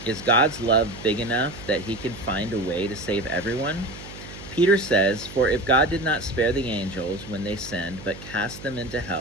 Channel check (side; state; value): right; noise; hum, 15 dB below the sound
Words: Is God's love big enough that he can find a way to save everyone? Peter says, "For if God did not spare the angels when they sinned, but cast them into